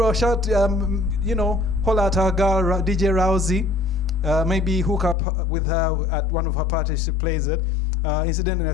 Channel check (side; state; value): right; drops out; at 5.2 s